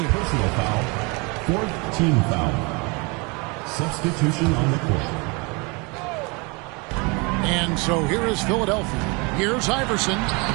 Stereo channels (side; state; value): left; quieter; 29.2 dB